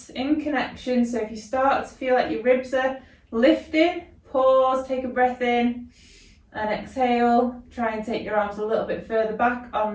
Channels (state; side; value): identical; both; correlation 1.00